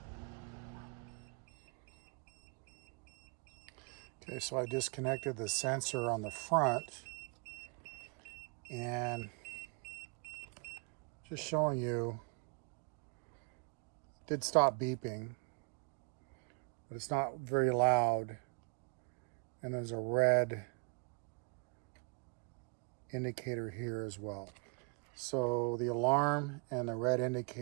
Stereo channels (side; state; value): left; quieter; 35.4 dB